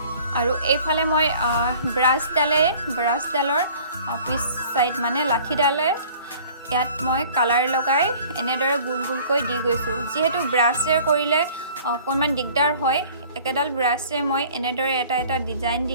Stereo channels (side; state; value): both; inverted; correlation -0.50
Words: আৰু এইফালে মই ব্ৰাছডালৰ পিছ চাইড মানে লাঠিডালে ইয়াত মই কালাৰ লগাই এনেদৰে গোল গোলকৈ দি গৈছোঁ। যিহেতু ব্ৰাছেৰে কৰিলে অকণমান দিগদাৰ হয়, একেডাল ব্ৰাছেৰে মই এনেদৰে এটা এটা ডিজাইন